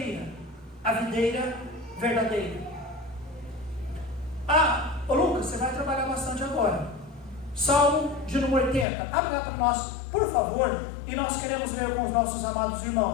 A videira verdadeira. Ô Lucas, você vai trabalhar bastante agora. Salmo de número 80. Abre lá para nós, por favor, e nós queremos ler com os nossos amados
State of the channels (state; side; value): drops out; right; at 8.8 s